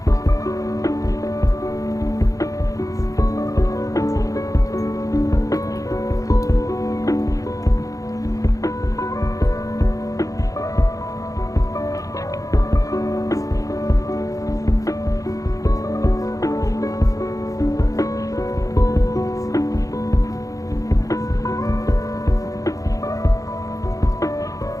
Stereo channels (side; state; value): right; late; 0.17 ms